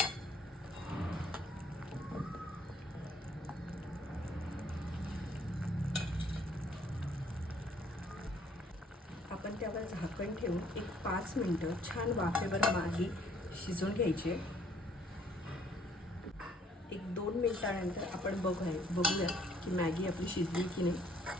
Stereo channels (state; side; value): normal; both; correlation 0.62